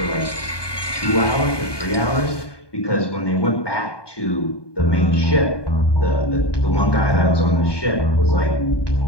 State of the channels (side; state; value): right; late; 1.2 ms